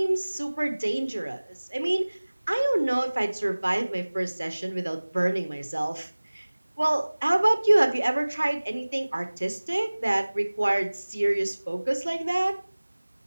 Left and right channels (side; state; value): both; inverted; correlation -1.00